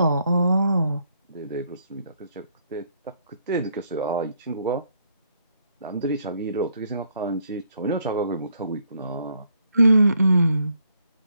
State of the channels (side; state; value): both; inverted; correlation -0.72